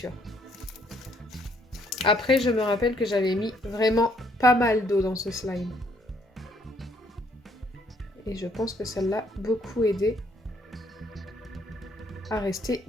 Après, je me rappelle que j'avais mis vraiment pas mal d'eau dans ce slime. Et je pense que ça l'a beaucoup aidé à rester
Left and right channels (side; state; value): both; normal; correlation 0.67